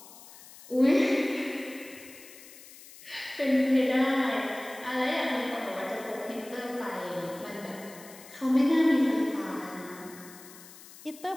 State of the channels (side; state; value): left; noise; hiss, 19 dB below the sound